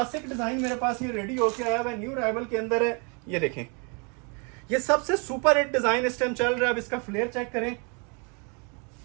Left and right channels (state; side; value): quieter; left; 34.2 dB